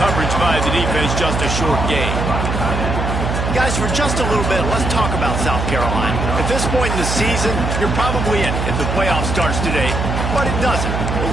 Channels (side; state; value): right; noise; hum, 2 dB below the sound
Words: by the defense, just a short gain. Guys, for just a little bit, let's talk about South Carolina. At this point in the season, you're probably in if the playoff starts today, but it doesn't.